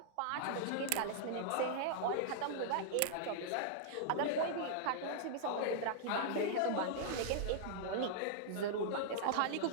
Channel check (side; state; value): both; different; correlation -0.01